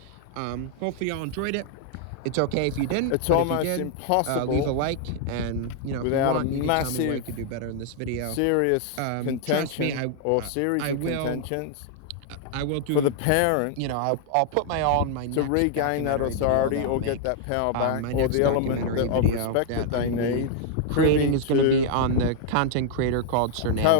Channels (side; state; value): both; different; correlation 0.00